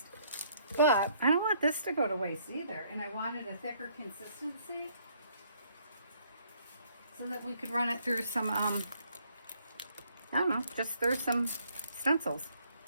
but I don't want this to go to waste either. And I wanted a thicker consistency. so that we could run it through some, I don't know, just through some stencils.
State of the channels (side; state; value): both; inverted; correlation -0.66